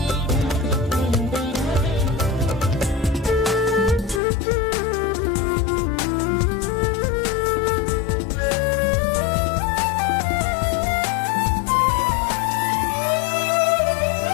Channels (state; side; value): drops out; right; at 4.2 s